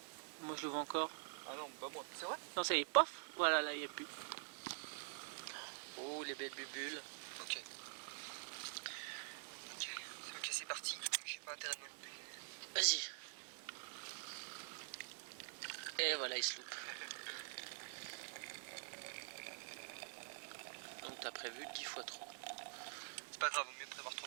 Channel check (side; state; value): left; silent; digital silence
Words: Moi, je le vois encore. Ah non, pas moi. C'est vrai? Non, ça y est, pof. Voilà, là, il n'y a plus. Oh, les belles bulles. Ok. Ok, c'est parti. J'ai pas intérêt de me louper. Vas-y. Et voilà, il se loupe. Donc t'as prévu 10 fois trop. C'est pas grave, vaut mieux prévoir trop